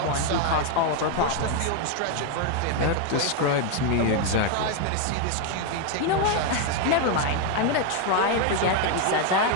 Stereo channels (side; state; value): both; different; correlation 0.01